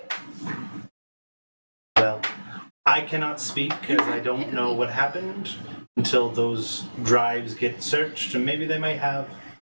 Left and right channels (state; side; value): inverted; both; correlation -1.00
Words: Well, I cannot speak as I don't know what happened until those drives get searched, and maybe they might have